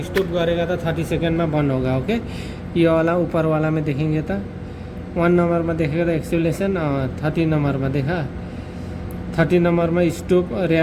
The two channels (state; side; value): identical; both; correlation 1.00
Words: स्टॉप करेगा तो 30 सेकेंड में बंद होगा। ओके, ये वाला ऊपर वाला में देखेंगे तो 1 नंबर में देखेगा तो एक्सुलेशन। 30 नंबर में देखा, 30 नंबर में स्टॉप